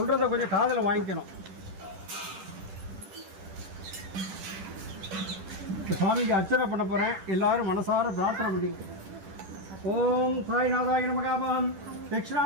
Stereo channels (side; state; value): left; late; 10 ms